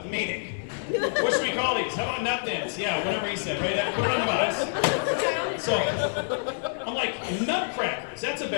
the meeting. What should we call these? How about Nut Thins? Yeah, whatever he said, right? Put it on the box. So, I'm like, Nutcrackers. That's a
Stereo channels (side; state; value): right; silent; digital silence